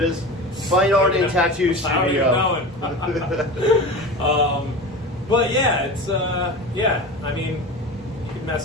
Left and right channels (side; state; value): both; normal; correlation 0.30